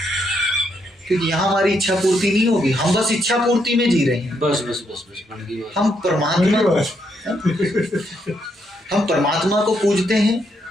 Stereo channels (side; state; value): both; normal; correlation 0.77